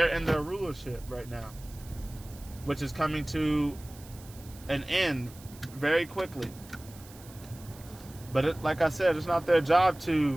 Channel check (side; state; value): right; noise; hiss, 21 dB below the sound